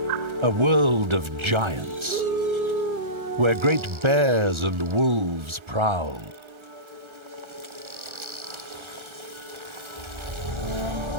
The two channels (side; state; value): left; late; 1.3 ms